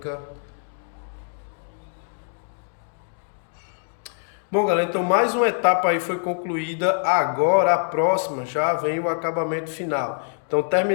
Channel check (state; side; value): silent; right; digital silence